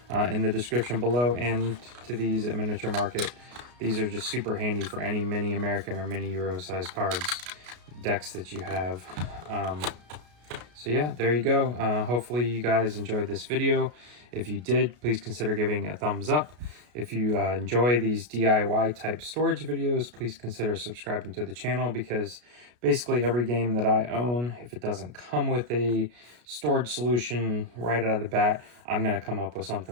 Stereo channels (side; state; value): left; late; 33 ms